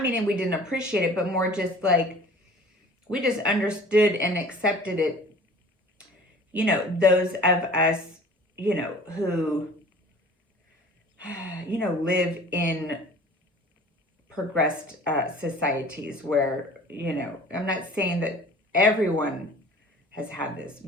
meaning we didn't appreciate it, but more just like we just understood and accepted it. You know, those of us, you know, who, you know, live in progressed societies where, you know, I'm not saying that everyone has had this,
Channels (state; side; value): normal; both; correlation 0.45